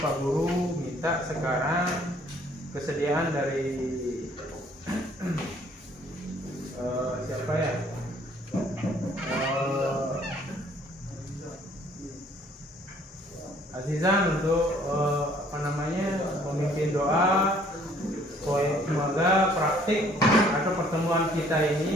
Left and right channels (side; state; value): both; normal; correlation 0.60